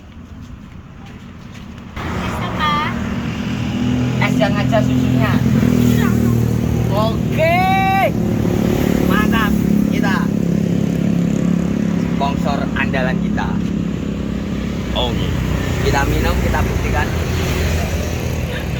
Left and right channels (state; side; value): identical; both; correlation 1.00